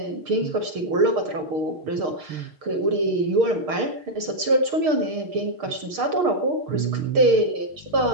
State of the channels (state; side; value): late; left; 6.5 ms